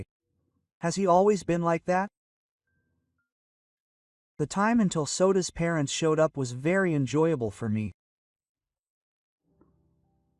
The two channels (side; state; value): both; identical; correlation 1.00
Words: Has he always been like that? The time until Soda's parents showed up was very enjoyable for me.